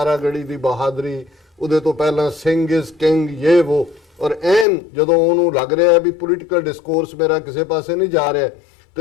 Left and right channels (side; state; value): right; drops out; at 4.7 s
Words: ਗੜੀ ਦੀ ਬਹਾਦਰੀ, ਉਹਦੇ ਤੋਂ ਪਹਿਲਾਂ ਸਿੰਘ ਇਜ਼ ਕਿੰਗ, ਇਹ ਉਹ। ਔਰ ਐਨ ਜਦੋਂ ਉਹਨੂੰ ਲੱਗ ਰਿਹਾ ਵੀ ਪੋਲੀਟੀਕਲ ਡਿਸਕੋਰਸ ਮੇਰਾ ਕਿਸੇ ਪਾਸੇ ਨਹੀਂ ਜਾ ਰਿਹਾ